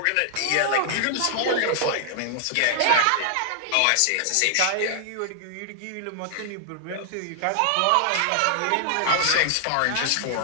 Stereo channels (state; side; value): different; both; correlation -0.01